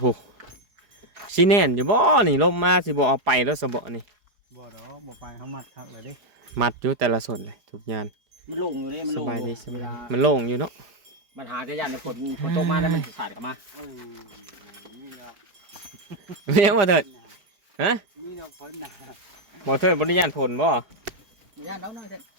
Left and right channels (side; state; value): left; late; 4.8 ms